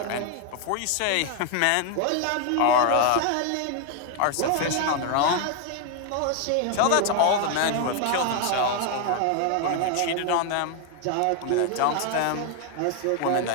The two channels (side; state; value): both; different; correlation 0.00